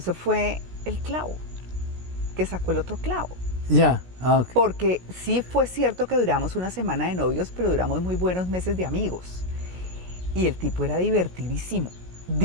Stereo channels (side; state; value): left; late; 16 ms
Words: fue el clavo, que sacó el otro clavo. Ya, okay. Porque sí fue cierto que duramos una semana de novios, pero duramos muy buenos meses de amigos. Y el tipo era divertidísimo,